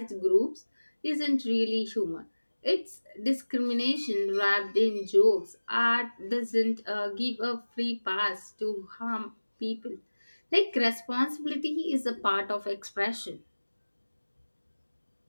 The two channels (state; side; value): inverted; both; correlation -1.00